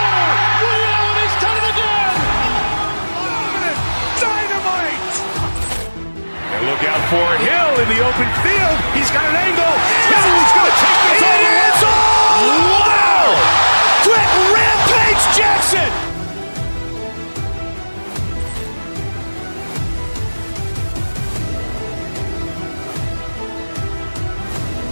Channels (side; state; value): both; inverted; correlation -1.00